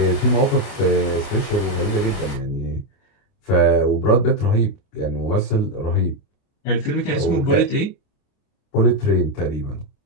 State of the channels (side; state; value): right; late; 29 ms